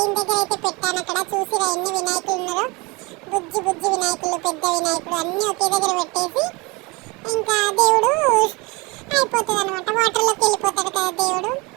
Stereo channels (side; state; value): left; quieter; 26.0 dB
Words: దగ్గర అయితే పెట్టాను. అక్కడ చూసిరా ఎన్ని వినాయకులు ఉన్నారో, బుజ్జి బుజ్జి వినాయకులు, పెద్ద వినాయకుడు అన్నీ ఒకే దగ్గర పెట్టేసి ఇంకా దేవుడు అయిపోతుంది అనమాట. వాటర్లోకి వెళ్ళిపోతాడు కదా దేవుడు.